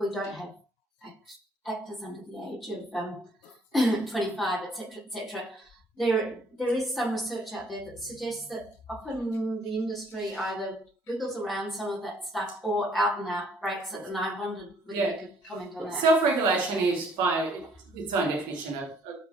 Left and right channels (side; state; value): both; normal; correlation 0.63